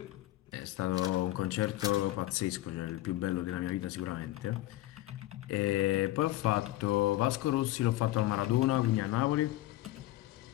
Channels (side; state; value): right; quieter; 16.2 dB